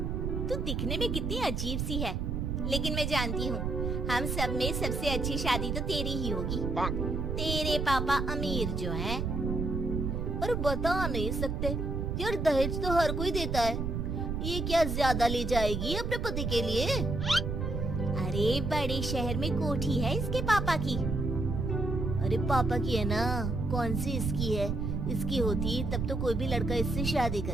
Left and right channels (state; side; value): noise; right; rumble, 1 dB below the sound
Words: तू दिखने में कितनी अजीब सी है, लेकिन मैं जानती हूँ हम सब में सबसे अच्छी शादी तो तेरी ही होगी। तेरे पापा अमीर जो हैं। और बता नहीं सकते यार, दहेज तो हर कोई देता है, ये क्या ज्यादा ले जाएगी अपने पति के लिए? अरे बड़े शहर में कोठी है इसके पापा की। अरे पापा की है ना, कौन सी इसकी है? इसकी होती तब तो कोई भी लड़का इससे शादी कर